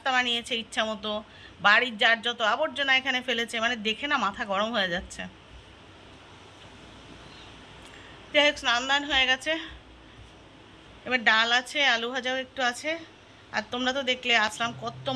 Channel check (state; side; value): identical; both; correlation 1.00